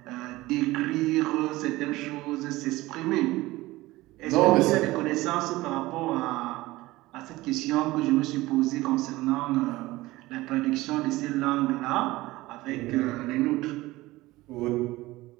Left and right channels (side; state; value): left; quieter; 18.9 dB